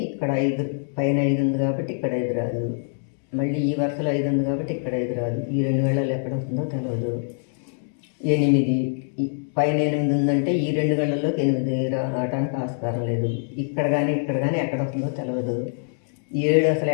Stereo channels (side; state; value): right; silent; digital silence